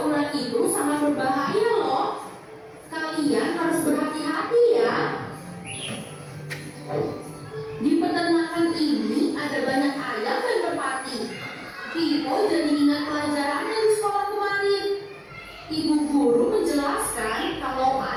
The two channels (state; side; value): identical; both; correlation 1.00